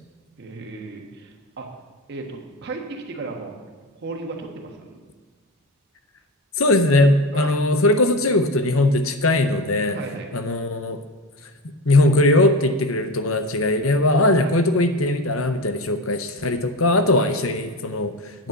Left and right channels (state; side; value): normal; both; correlation 0.24